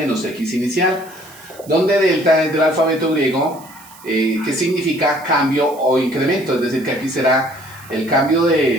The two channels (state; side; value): noise; right; hiss, 22 dB below the sound